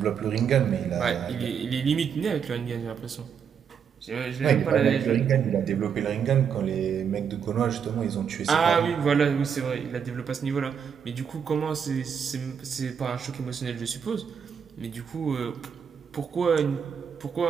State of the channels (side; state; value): left; quieter; 7.3 dB